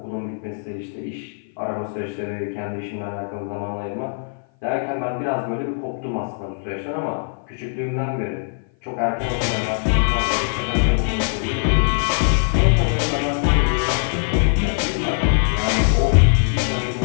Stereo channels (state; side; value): silent; right; 56 dB below the other